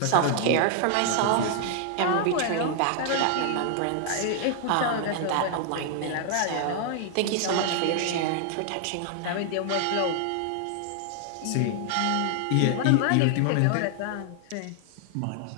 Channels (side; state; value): both; different; correlation 0.00